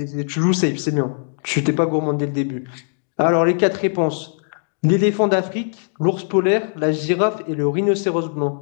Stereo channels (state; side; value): silent; right; digital silence